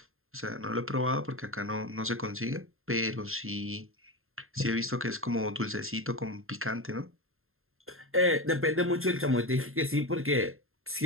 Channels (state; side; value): late; left; 0.61 ms